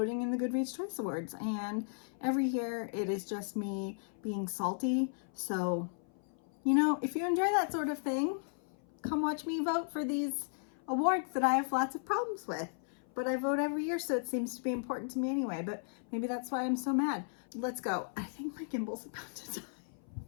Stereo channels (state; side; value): silent; right; 54 dB below the other